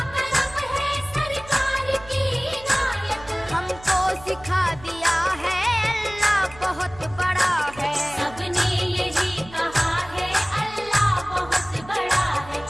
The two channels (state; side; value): noise; right; hum, 19 dB below the sound